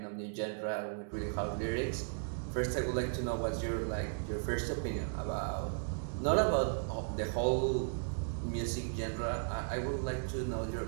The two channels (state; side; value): silent; left; digital silence